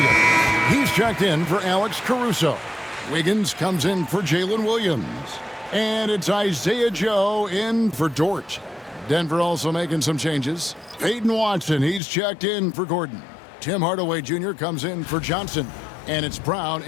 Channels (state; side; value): drops out; right; at 12.0 s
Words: He's checked in for Alex Caruso. Wiggins comes in for Jalen Williams. And it's Isaiah Joe in for Dort. Denver also making some changes. Peyton Watson, he's checked in for Gordon. Tim Hardaway Jr. comes in for Johnson. And it's Brown